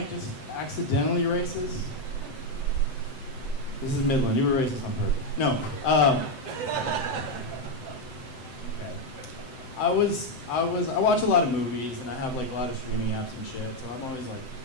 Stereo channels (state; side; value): late; right; 7.8 ms